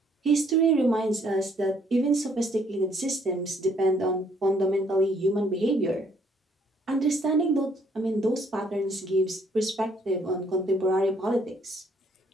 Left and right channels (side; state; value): both; normal; correlation 0.65